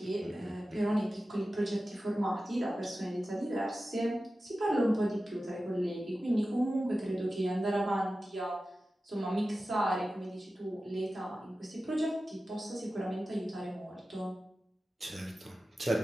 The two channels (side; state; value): both; normal; correlation 0.94